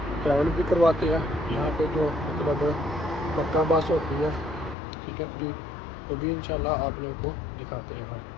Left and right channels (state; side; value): drops out; right; at 4.8 s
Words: ट्रैवल भी करवाते हैं यहाँ पे जो मतलब मक्का बस होती है, ठीक है जी। तो भी इंशाल्लाह आप लोगों को दिखाते हैं हम।